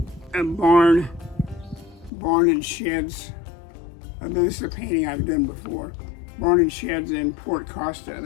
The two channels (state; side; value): drops out; right; at 2.1 s